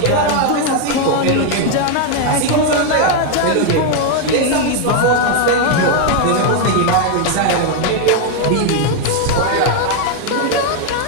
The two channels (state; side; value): different; both; correlation 0.01